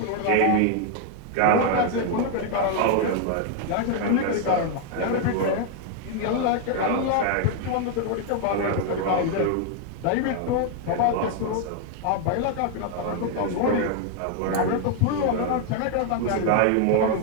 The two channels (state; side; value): different; both; correlation 0.00